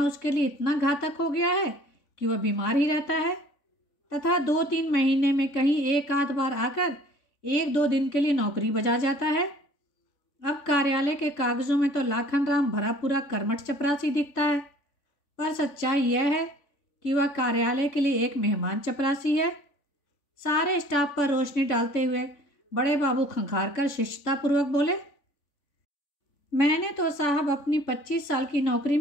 उसके लिए इतना घातक हो गया है कि वह बीमार ही रहता है तथा 2-3 महीने में कहीं एक आध बार आकर 1-2 दिन के लिए नौकरी बजा जाता है। अब कार्यालय के कागजों में तो लाखन राम भरा पूरा कर्मठ चपरासी दिखता है, पर सच्चाई यह है कि वह कार्यालय के लिए एक मेहमान चपरासी है। सारे स्टाफ पर रोशनी डालते हुए बड़े बाबू खंखार कर शिष्टतापूर्वक बोले, मैंने तो साहब अपनी 25 साल की नौकरी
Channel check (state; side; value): late; right; 3.5 ms